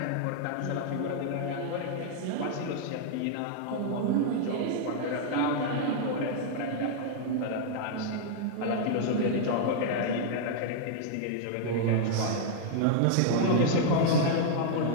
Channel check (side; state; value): both; different; correlation -0.01